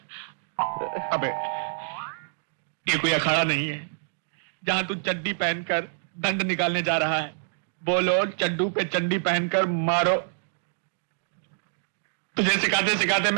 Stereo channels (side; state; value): left; silent; digital silence